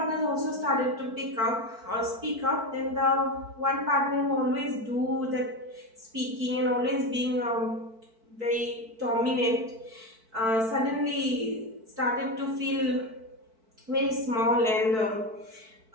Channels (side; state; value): left; late; 4.5 ms